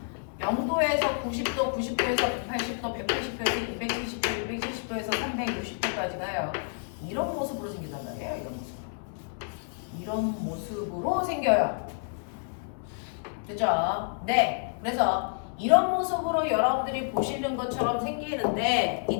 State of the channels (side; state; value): right; silent; 58 dB below the other